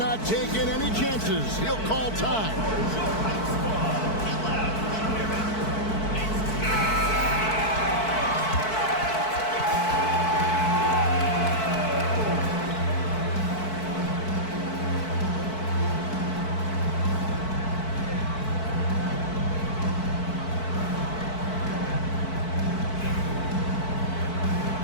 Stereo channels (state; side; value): late; right; 4.6 ms